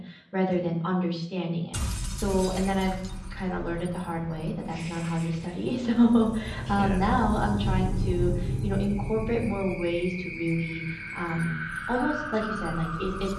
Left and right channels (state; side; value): identical; both; correlation 1.00